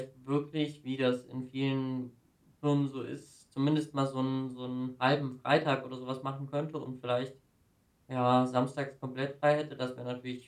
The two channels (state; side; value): identical; both; correlation 1.00